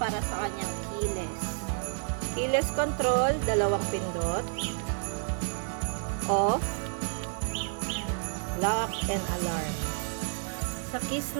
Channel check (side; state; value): left; silent; 58 dB below the other